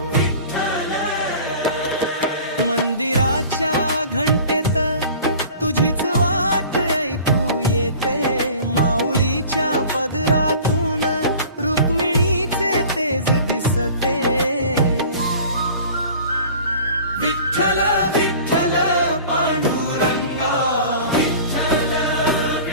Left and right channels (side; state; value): both; inverted; correlation -0.44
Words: मंदिराच्या घंटेत तुझीच वाट ऐकू येते, माऊलीच्या पदरातून रुक्मिणीचे तेज दिसते। विठ्ठल विठ्ठल पांडुरंगा, विठ्ठल